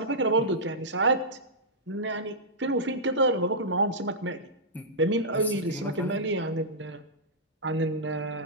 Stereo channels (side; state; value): both; normal; correlation -0.12